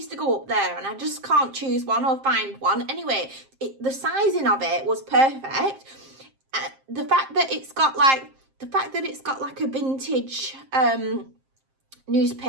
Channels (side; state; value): left; late; 7.5 ms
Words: to go up there, and I just can't choose one or find one. Anyway, the sizing of it was perfect. The fact that it's got like a vintage